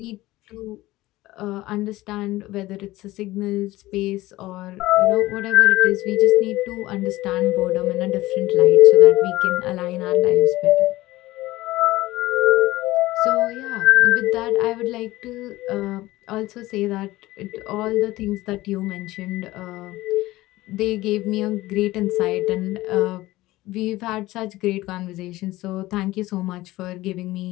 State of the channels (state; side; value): quieter; right; 17.9 dB